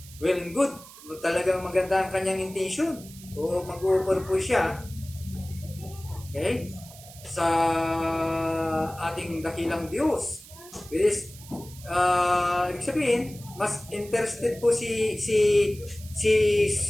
Well and good. talagang maganda ang kanyang intention o mag-offer po siya, okay, sa ating dakilang Diyos. Which is, ibig sabihin, mas interested po si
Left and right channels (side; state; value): right; noise; hiss, 19 dB below the sound